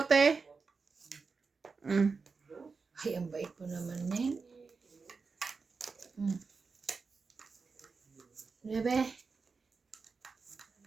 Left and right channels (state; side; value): quieter; left; 4.7 dB